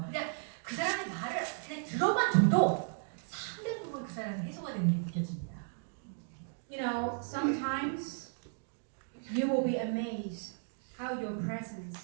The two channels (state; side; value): silent; left; digital silence